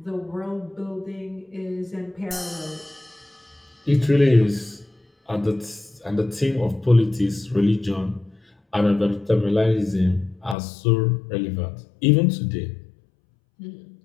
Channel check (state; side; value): drops out; right; at 10.6 s